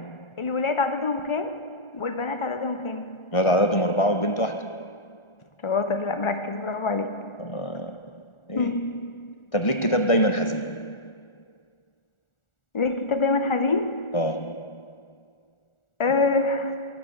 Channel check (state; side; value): late; right; 1.4 ms